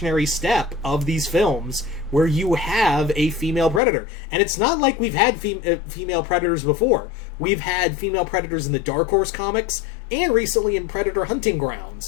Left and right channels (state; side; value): drops out; right; at 3.8 s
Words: step of these films where you have a female Predator. And it's not like we've had female Predators before. We've had female Predators in the Dark Horse comics and recently in Predator Hunting